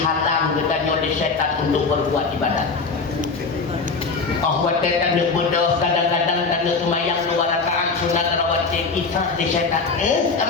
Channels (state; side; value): quieter; right; 4.4 dB